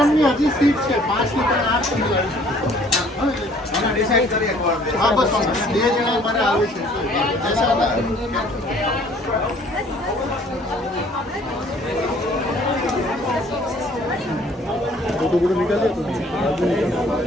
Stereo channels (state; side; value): normal; both; correlation 0.57